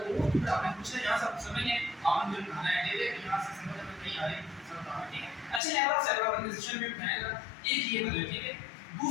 वो तो आपने पूछना, यहां सब समझ है, आपने जो बनाना है दे यहां से समझ में नहीं आ रही सब बताना, ठीक है। अच्छा लेवल ऑफ सेलुलर ऑर्गेनाइजेशन में बनाएगा एक ये बदल, ठीक है।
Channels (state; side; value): drops out; right; at 5.6 s